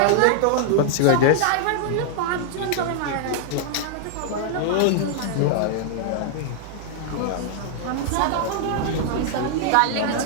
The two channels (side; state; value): both; different; correlation -0.01